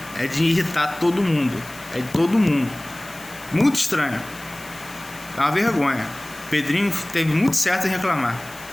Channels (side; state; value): left; noise; hiss, 18 dB below the sound